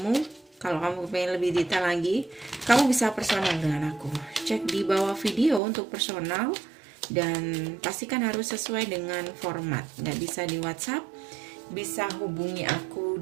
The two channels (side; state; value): left; drops out; at 5.6 s